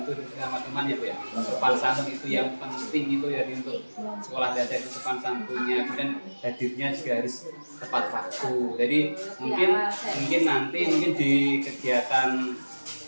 sama teman ya Bu ya. Sopan santun itu yang penting itu ya untuk sekolah dasar itu sopan santunnya, kemudian hadirnya juga harus tepat waktu. Jadi mungkin nanti di kegiatan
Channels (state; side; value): inverted; both; correlation -1.00